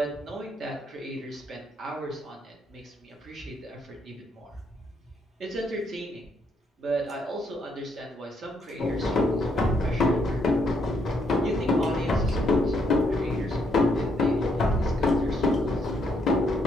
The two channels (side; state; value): both; normal; correlation 0.74